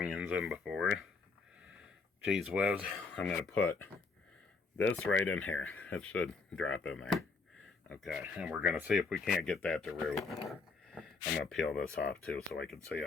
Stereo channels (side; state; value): right; quieter; 4.3 dB